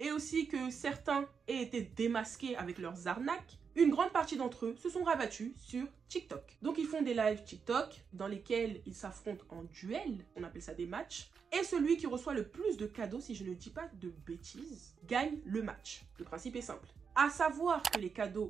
aussi que certains aient été démasqués avec leurs arnaques, une grande partie d'entre eux se sont rabattus sur TikTok. Donc ils font des lives TikTok dans lesquels ils s'affrontent en duel, on appelle ça des matchs, et celui qui reçoit le plus de cadeaux, si je ne dis pas de bêtises, gagne le match. Le principe est simple. À savoir que les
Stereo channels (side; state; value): left; quieter; 6.1 dB